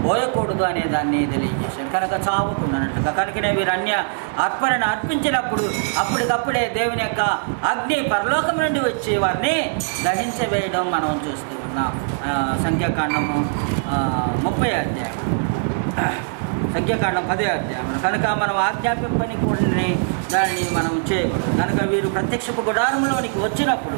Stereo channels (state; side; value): silent; left; digital silence